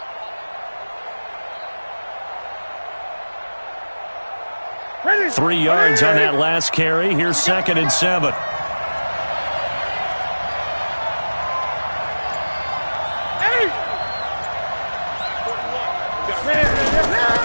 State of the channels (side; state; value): both; inverted; correlation -1.00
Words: Ready. 3 yards on that last carry. Here's 2nd and 7.